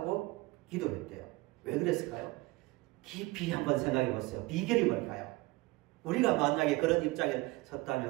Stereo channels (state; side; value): quieter; left; 21.9 dB